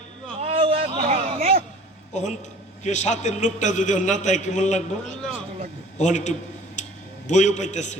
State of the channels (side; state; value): both; normal; correlation 0.47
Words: ওখান কে সাথের লোকটা যদি ওর না তাই কেমন লাগবো? ওখানে একটু বইও পাইতেছে,